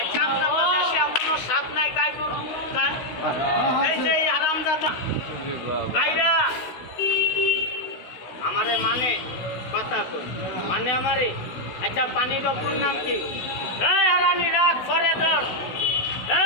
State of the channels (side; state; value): right; late; 16 ms